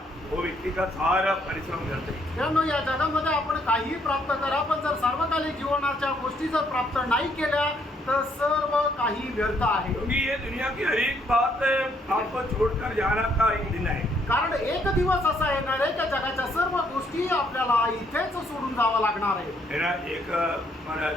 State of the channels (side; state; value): both; normal; correlation 0.69